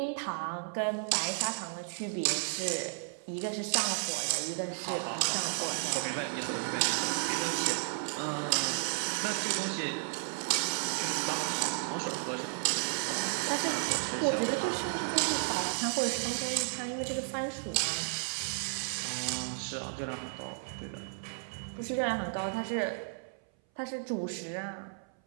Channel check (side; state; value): left; silent; 56 dB below the other